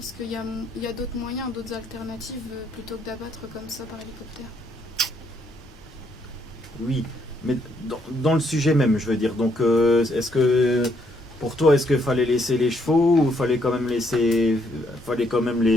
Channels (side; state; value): both; normal; correlation 0.72